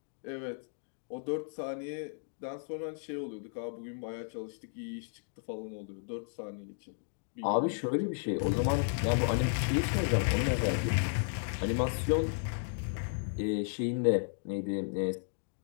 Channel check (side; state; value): right; silent; digital silence